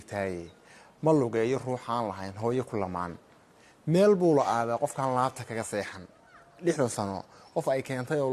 ma lugeeyo ruuxaan lahayn hooyo ku lamaan meel buu la aadaa qofkaan laabta kaga seexan 6 sano qof ay keentay oo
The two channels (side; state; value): both; identical; correlation 1.00